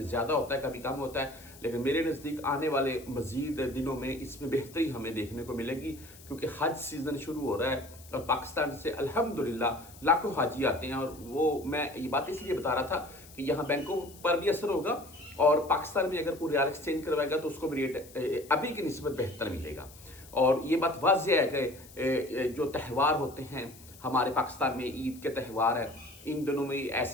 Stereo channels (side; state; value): left; noise; hiss, 21 dB below the sound